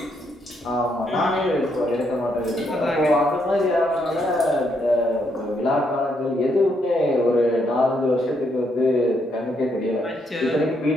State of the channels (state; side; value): normal; both; correlation 0.75